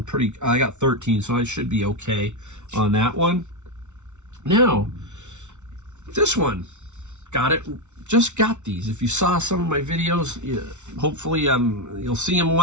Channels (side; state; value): left; late; 0.83 ms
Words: I got 13, so I should be okay on that one. Now, this one, just got these. If you saw some of my videos, hopefully you'll see them